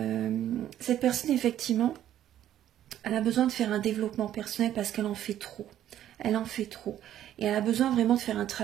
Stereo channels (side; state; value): left; quieter; 11.7 dB